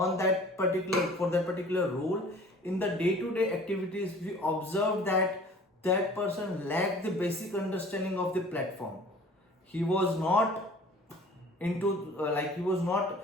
that particular role, in the day-to-day activities, we observed that that person lacked the basic understanding of the platform. He was not into he was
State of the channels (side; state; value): both; normal; correlation 0.48